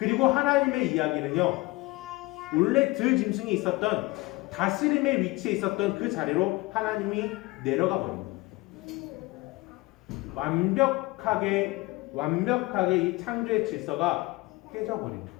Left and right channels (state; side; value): quieter; right; 21.9 dB